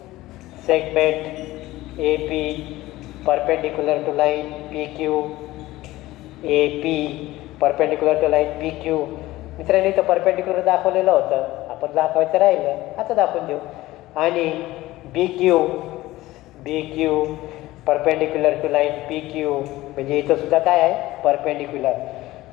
Segment A P perpendicular to line P Q. A P perpendicular to line P Q. मित्रांनो इथं परपेंडिक्युलर दाखवलेलं होतं आपण दाखवायचं राहिलं आता दाखवून देऊ. आणि B Q perpendicular to line P Q म्हणजे इथं सुद्धा काय आहे परपेंडिक्युलर.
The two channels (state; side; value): quieter; right; 17.5 dB